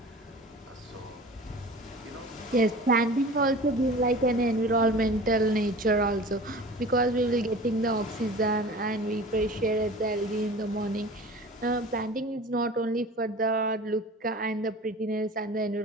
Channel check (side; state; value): both; normal; correlation 0.39